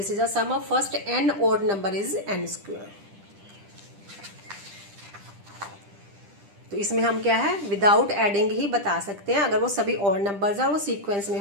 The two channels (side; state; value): left; late; 10 ms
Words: is a sum of first n odd number is n square. तो इसमें हम क्या है, विदाउट एडिंग ही बता सकते हैं। अगर वो सभी ओड नंबर्स हैं और वो सीक्वेंस में